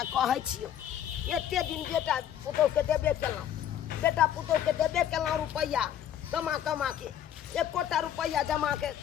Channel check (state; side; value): quieter; right; 10.3 dB